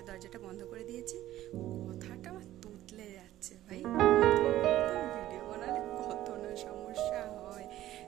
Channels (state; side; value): quieter; left; 14.1 dB